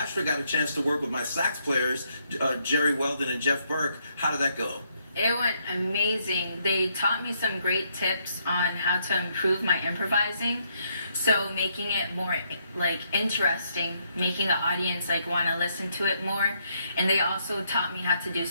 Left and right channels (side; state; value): both; inverted; correlation -0.74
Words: got a chance to work with my sax players, Jerry Weldon and Jeff Burke. How did that go? It went amazing. They taught me some great tips on how to improve my improvising. So making it more like interesting, making the audience like want to listen to it more. And they also taught me how to do